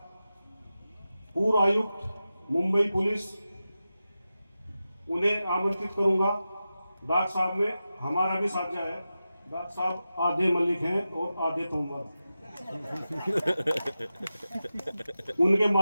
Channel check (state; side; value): inverted; both; correlation -0.92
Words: पूर्व आयुक्त मुंबई पुलिस, उन्हें आमंत्रित करूंगा। डॉक्टर साहब में हमारा भी साझा है। डॉक्टर साहब आधे मलिक हैं और आधे तोमर। उनके